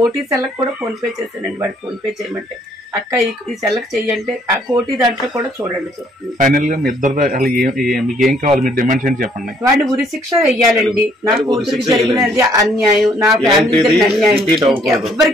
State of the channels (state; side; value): normal; both; correlation 0.65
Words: సెల్లకు కూడా ఫోన్ పే చేస్తానండి. వాడికి ఫోన్ పే చేయమంటే అక్క ఈ సెల్లకు చెయ్యంటే ఆ కోటి దాంట్లో కూడా చూడండి. ఫైనల్ గా మీ ఇద్దరు మీకు ఏం కావాలి, మీరు డిమాండ్స్ ఏంటి చెప్పండి. వాడిని ఉరి శిక్ష వెయ్యాలండి. నా కూతురికి జరిగినది అన్యాయం, నా ఫ్యామిలీ అన్యాయం